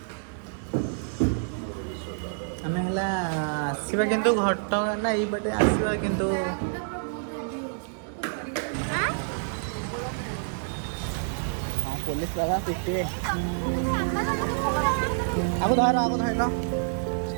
ଆମେ ହେଲା ଆସିବା କିନ୍ତୁ ଘଟଗାଁ ନା ଏଇପଟେ ଆସିବା କିନ୍ତୁ ହଁ ପୋଲିସ ବାବା ପିଟିବେ ଆଗ ଧରିଲ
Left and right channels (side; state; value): left; silent; digital silence